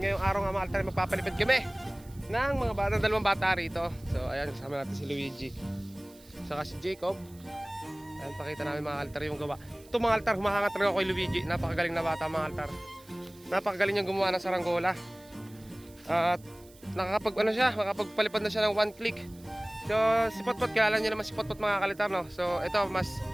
araw nga mga altar, magpapalipad kami ng mga bata, dalawang bata rito. So ayan, kasama natin si Luigi saka si Jacob. Ayan, pakita namin mga altar yung gawa. Ito mga altar, humahangat talaga ako kay Luigi. Napakagaling na bata mga altar. Napakagaling niyang gumawa ng saranggola. At makakapagpalipad na siya ng one click. So si Potpot, kilala niyo naman si Potpot mga kalitar, no? So ito, mas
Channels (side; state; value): right; noise; hiss, 25 dB below the sound